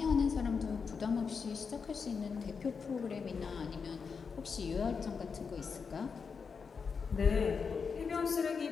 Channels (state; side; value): quieter; right; 5.6 dB